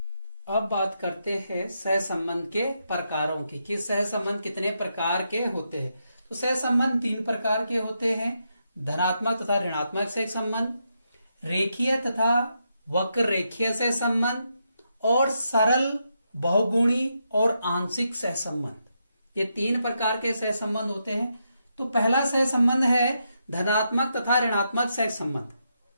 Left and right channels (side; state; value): both; inverted; correlation -0.82